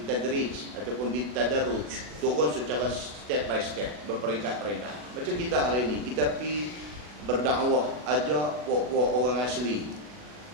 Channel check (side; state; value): left; late; 40 ms